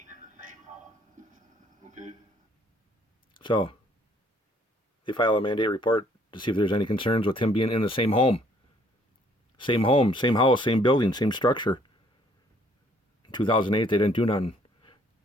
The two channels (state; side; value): normal; both; correlation 0.62